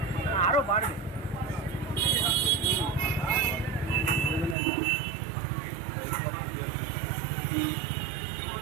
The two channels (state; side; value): drops out; left; at 4.5 s